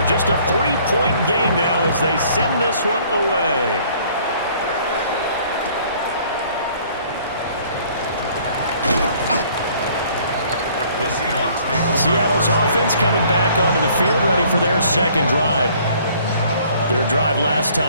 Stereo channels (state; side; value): inverted; both; correlation -0.58